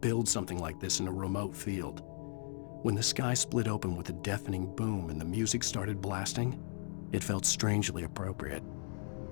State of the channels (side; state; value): right; silent; 53 dB below the other